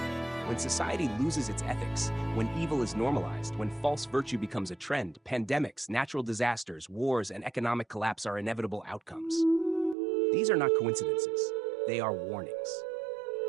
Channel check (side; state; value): left; drops out; at 10.0 s